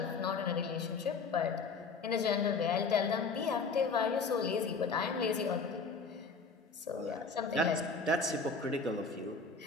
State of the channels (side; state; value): right; quieter; 4.5 dB